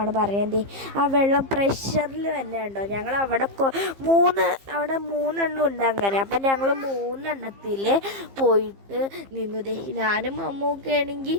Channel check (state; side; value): late; left; 15 ms